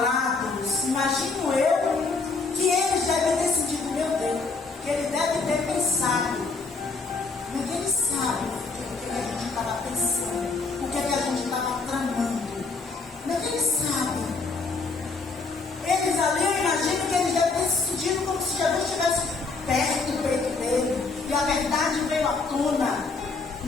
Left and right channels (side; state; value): right; quieter; 4.2 dB